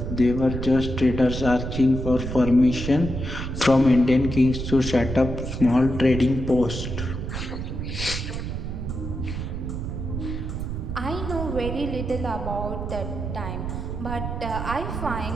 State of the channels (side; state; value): right; noise; rumble, 5 dB below the sound